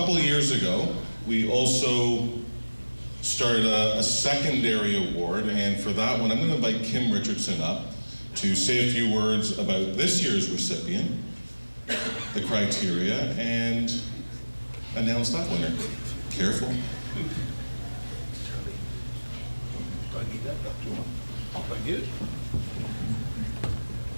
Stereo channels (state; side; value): inverted; both; correlation -1.00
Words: of years ago, we also started a secondary award, and for that one, I'm going to invite Kim Richardson up to say a few words about this year's recipient, the criteria, and announce that winner. Careful.